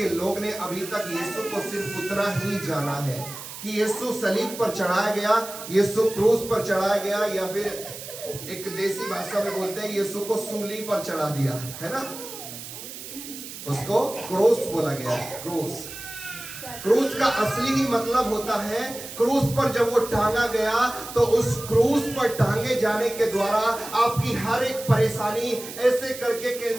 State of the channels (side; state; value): right; noise; hiss, 11 dB below the sound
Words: लोग ने अभी तक यीशु को सिर्फ उतना ही जाना है कि यीशु सलीब पर चढ़ाया गया, यीशु क्रूस पर चढ़ाया गया, या फिर एक देसी भाषा में बोलते हैं यीशु को सूली पर चढ़ा दिया, है ना? उसको क्रूस बोला गया है। क्रूस क्रूस का असली ही मतलब होता है, क्रूस पर जब वो टांगा गया तो उस क्रूस पर टांगे जाने के द्वारा आपकी हर एक परेशानी ऐसे करके